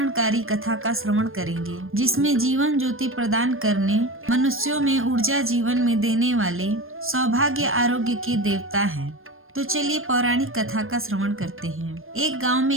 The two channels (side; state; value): left; late; 0.60 ms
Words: कथा का श्रवण करेंगे, जिसमें जीवन ज्योति प्रदान करने, मनुष्यों में ऊर्जा जीवन में देने वाले सौभाग्य आरोग्य के देवता हैं। तो चलिए पौराणिक कथा का श्रवण करते हैं। एक गांव में